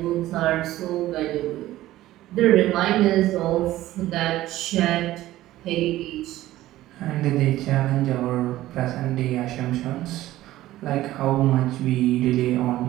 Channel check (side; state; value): left; quieter; 15.4 dB